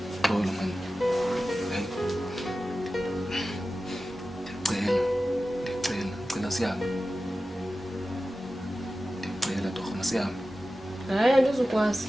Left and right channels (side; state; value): both; normal; correlation 0.94